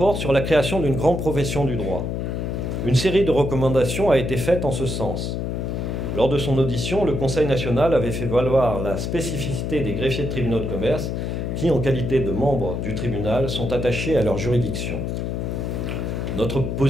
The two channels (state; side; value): noise; left; hum, 2 dB below the sound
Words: sur la création d'une grande profession du droit. Une série de recommandations a été faite en ce sens. Lors de son audition, le Conseil national avait fait valoir la spécificité des greffiers de tribunaux de commerce qui, en qualité de membres du tribunal, sont attachés à leur juridiction. Notre